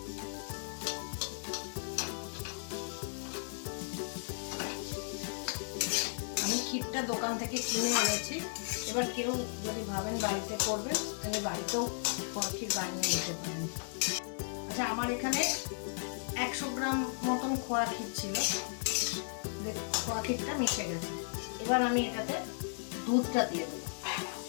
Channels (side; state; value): right; silent; 54 dB below the other